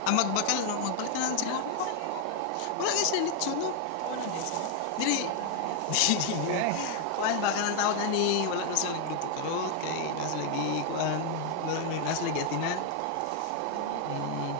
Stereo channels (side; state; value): both; different; correlation 0.00